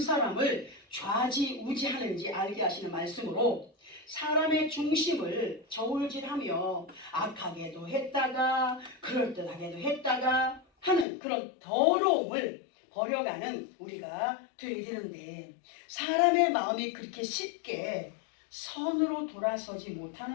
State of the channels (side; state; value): right; drops out; at 11.1 s